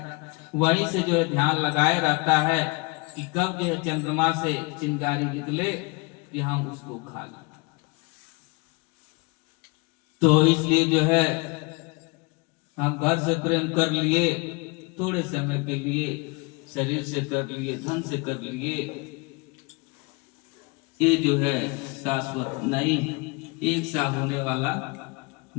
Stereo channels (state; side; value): quieter; right; 28.2 dB